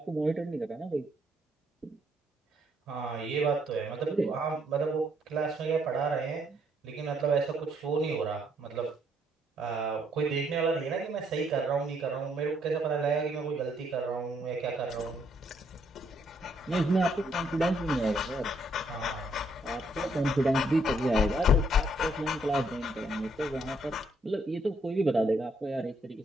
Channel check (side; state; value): both; normal; correlation 0.70